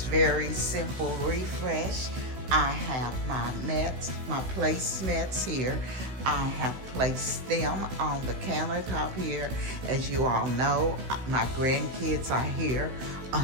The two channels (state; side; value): late; left; 16 ms